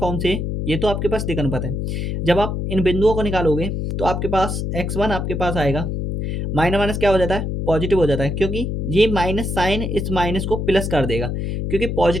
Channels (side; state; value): left; noise; hum, 2 dB below the sound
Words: से, ये तो आपके पास दिक अनुपात है, जब आप इन बिंदुओं को निकालोगे तो आपके पास x1 आपके पास आएगा, माइनस माइनस क्या हो जाता है, पॉजिटिव हो जाता है, क्योंकि ये माइनस साइन इस माइनस को प्लस कर देगा, क्योंकि